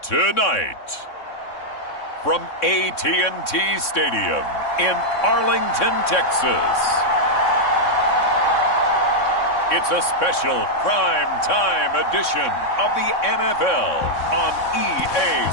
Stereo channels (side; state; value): right; late; 3.6 ms